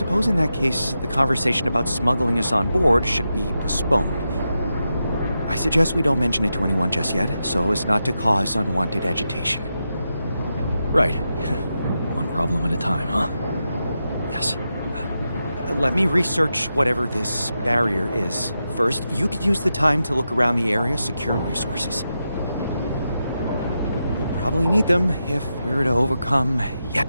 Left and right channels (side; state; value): both; inverted; correlation -0.88